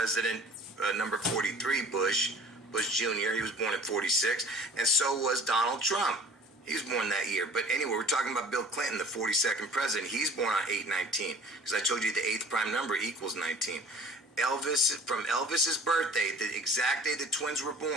number 43, Bush Jr., he was born at 46, and so was Donald Trump. He was born that year. But anyway, we're talking about Bill Clinton, the 42nd president. He's born on 8/19, because I told you the 8th prime number equals 19. From Elvis's birthday, the exact day the twins were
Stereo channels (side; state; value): both; normal; correlation 0.47